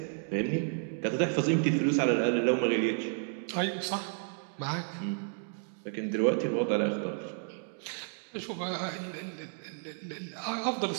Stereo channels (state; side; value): silent; left; 57 dB below the other